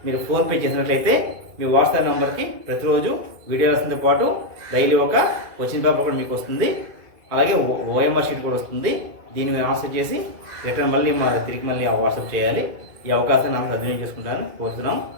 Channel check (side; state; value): left; late; 2.2 ms